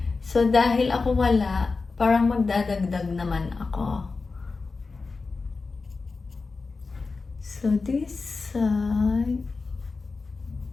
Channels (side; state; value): right; quieter; 4.1 dB